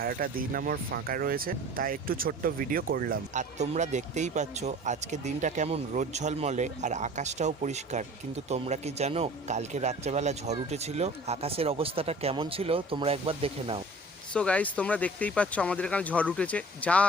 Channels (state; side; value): normal; both; correlation 0.45